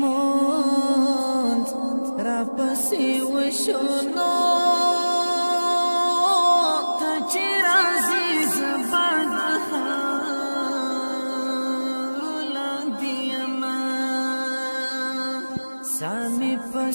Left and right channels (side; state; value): both; inverted; correlation -1.00